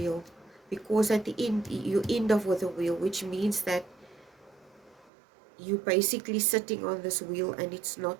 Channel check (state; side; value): drops out; left; at 5.1 s